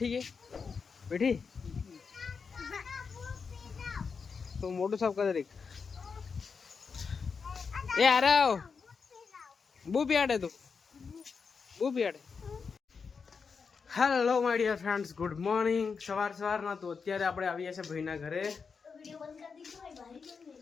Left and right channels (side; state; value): right; quieter; 5.5 dB